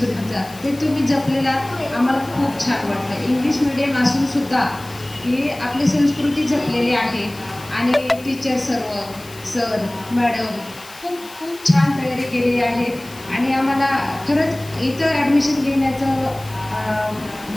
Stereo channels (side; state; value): left; noise; hiss, 20 dB below the sound